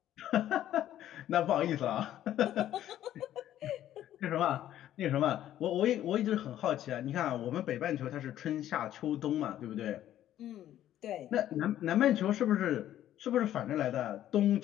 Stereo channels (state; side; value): quieter; right; 12.1 dB